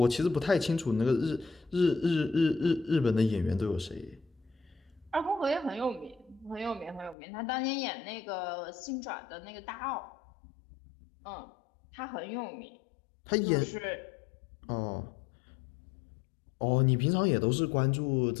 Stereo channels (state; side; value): drops out; right; at 7.2 s